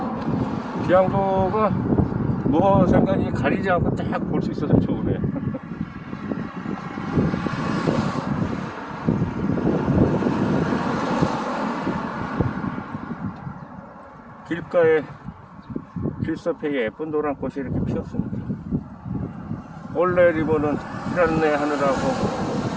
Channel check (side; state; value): both; identical; correlation 1.00